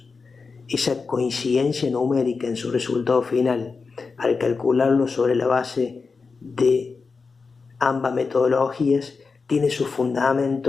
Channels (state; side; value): quieter; right; 4.7 dB